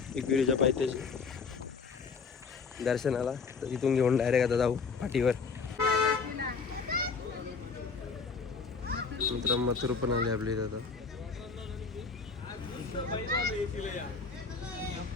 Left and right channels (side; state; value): right; quieter; 5.0 dB